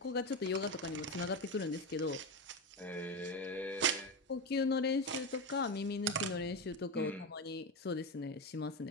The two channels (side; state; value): both; normal; correlation 0.16